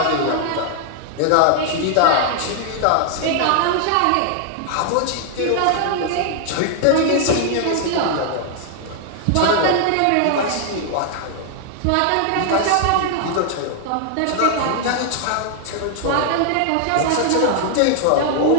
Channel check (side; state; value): both; different; correlation 0.00